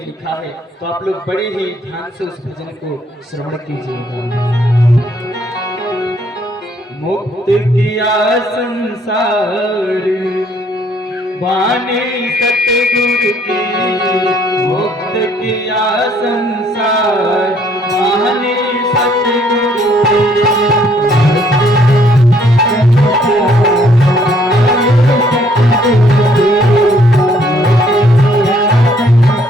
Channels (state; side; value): normal; both; correlation 0.65